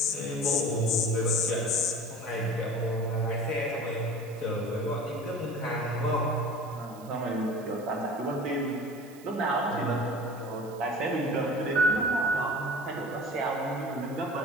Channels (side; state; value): right; noise; hiss, 23 dB below the sound